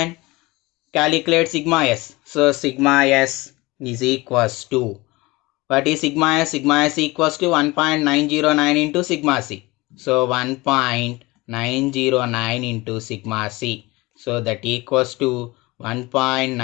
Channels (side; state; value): right; quieter; 22.2 dB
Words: calculate sigma S. So sigma S is equals to, what is sigma S? Sigma S equals to 1.909 into sigma C. So 1.909 into sigma C. So that equals to